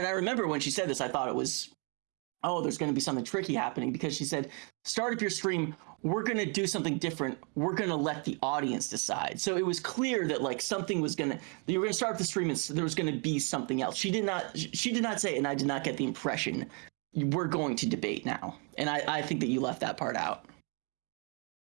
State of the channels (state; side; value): quieter; left; 36.0 dB